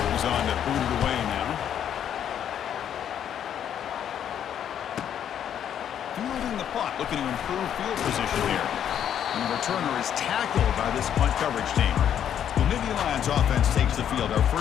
He's on to boot it away now. Fielding the punt, looking to improve field position here. And the returner is tackled by this punt coverage team. The Nittany Lions offense takes the field. Our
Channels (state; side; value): quieter; right; 9.5 dB